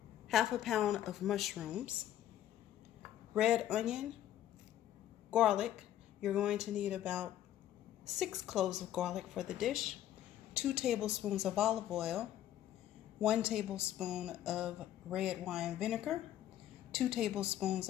half a pound of mushrooms, red onion, garlic. You're going to need about 6 cloves of garlic for the dish, 2 tablespoons of olive oil, 1 tablespoon of red wine vinegar, 2 tablespoons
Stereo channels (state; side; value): quieter; right; 12.0 dB